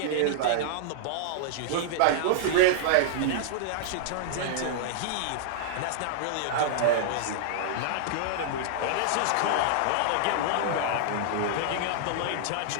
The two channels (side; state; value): both; different; correlation -0.01